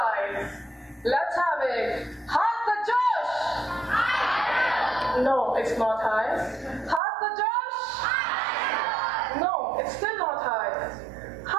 let's have it. Heart the Josh! No, it's not high. Heart the Josh! No, it's still not high.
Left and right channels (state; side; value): drops out; left; at 7.0 s